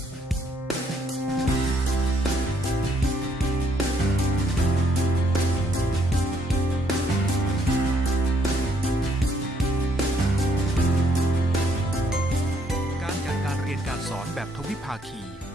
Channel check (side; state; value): both; normal; correlation 0.69